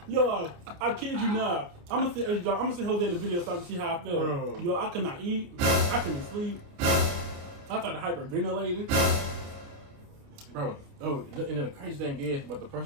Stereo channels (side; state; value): left; late; 29 ms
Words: Yo, I kid you not. I'm gonna see Jose the video so I can see how I felt. Bro. Yo, I could not eat. I couldn't sleep. I started hyperventilating. bro. Oh, and then the crazy thing is, but the